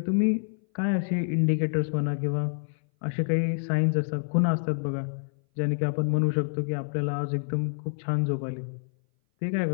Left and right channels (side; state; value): right; silent; 58 dB below the other